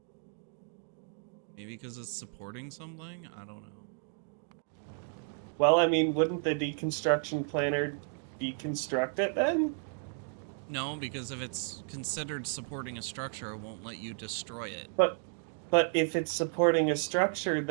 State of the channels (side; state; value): left; silent; 56 dB below the other